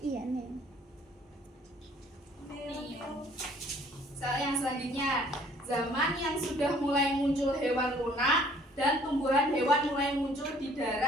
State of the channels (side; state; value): both; normal; correlation 0.57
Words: Iya, nih. Soal yang selanjutnya, zaman yang sudah mulai muncul hewan lunak dan tumbuhan hewan mulai muncul di